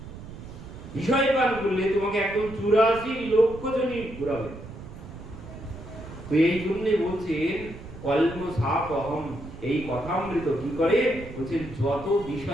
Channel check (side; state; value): right; noise; rumble, 13 dB below the sound